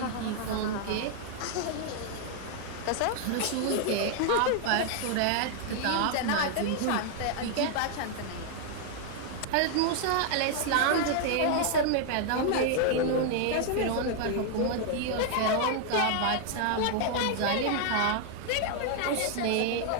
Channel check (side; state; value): both; different; correlation 0.00